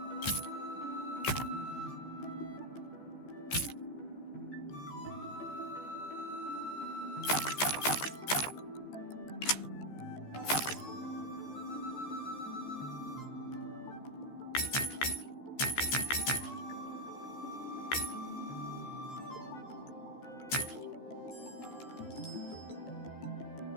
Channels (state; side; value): late; right; 14 ms